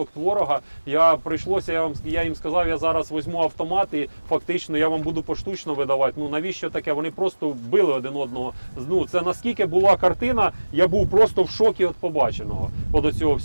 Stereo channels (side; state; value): both; inverted; correlation -1.00